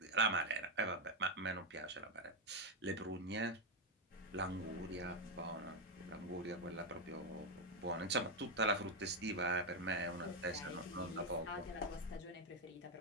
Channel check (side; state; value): both; normal; correlation 0.03